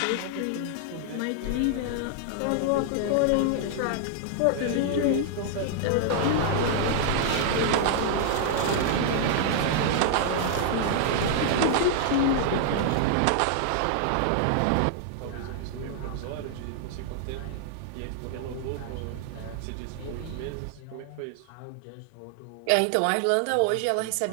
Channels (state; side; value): different; both; correlation 0.00